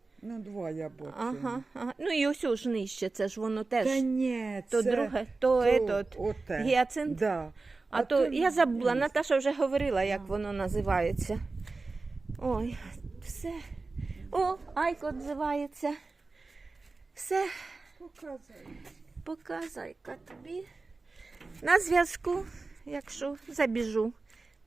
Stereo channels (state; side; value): quieter; left; 3.7 dB